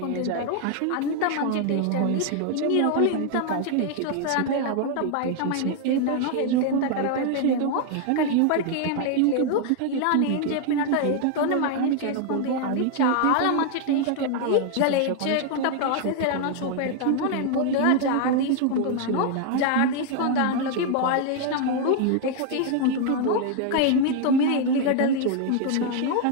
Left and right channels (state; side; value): different; both; correlation 0.00